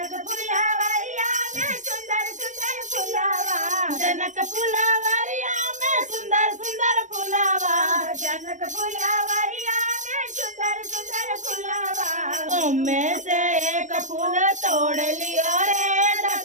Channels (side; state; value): left; late; 0.36 ms